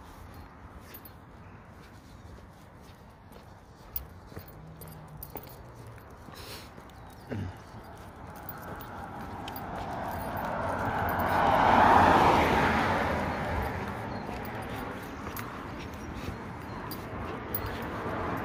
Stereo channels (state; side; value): identical; both; correlation 1.00